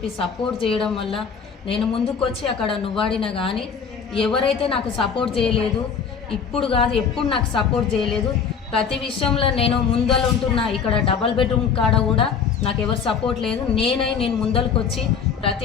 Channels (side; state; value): right; quieter; 6.5 dB